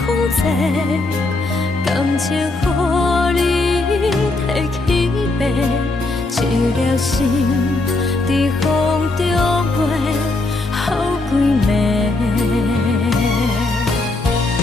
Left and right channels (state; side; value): quieter; right; 3.0 dB